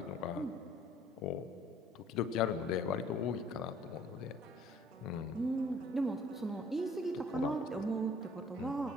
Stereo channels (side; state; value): both; normal; correlation 0.56